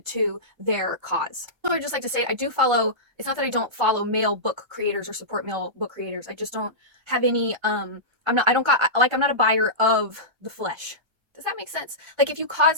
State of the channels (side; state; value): left; late; 1.4 ms